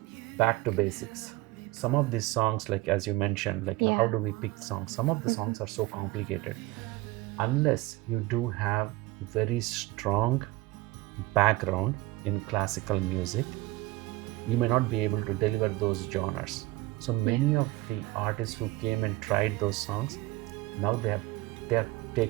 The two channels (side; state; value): left; quieter; 19.8 dB